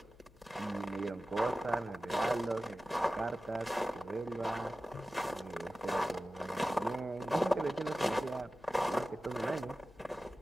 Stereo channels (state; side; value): noise; left; hum, 24 dB below the sound